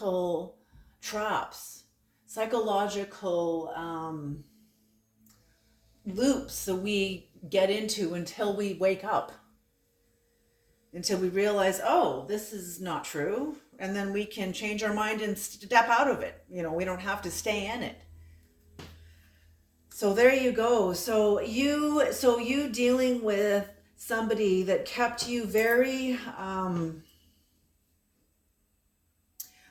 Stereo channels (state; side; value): identical; both; correlation 1.00